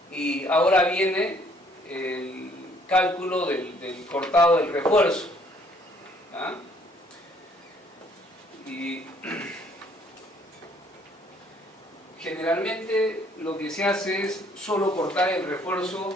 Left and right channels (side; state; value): both; normal; correlation 0.63